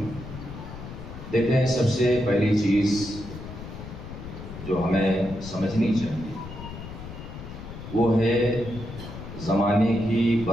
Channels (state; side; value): noise; left; rumble, 11 dB below the sound